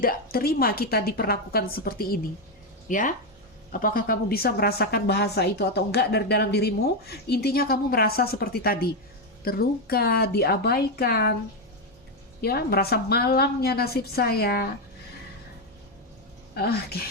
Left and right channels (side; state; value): both; normal; correlation 0.06